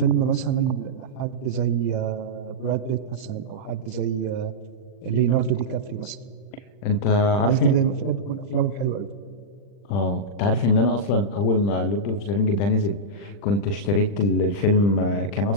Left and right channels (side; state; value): right; late; 40 ms